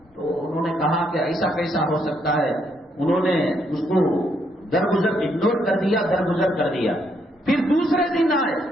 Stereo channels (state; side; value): normal; both; correlation 0.74